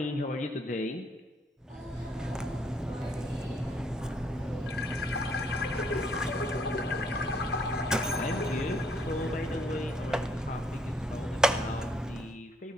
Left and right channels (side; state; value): both; normal; correlation 0.68